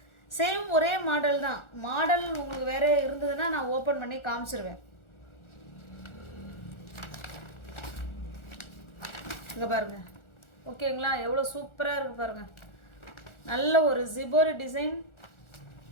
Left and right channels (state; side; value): late; right; 1.4 ms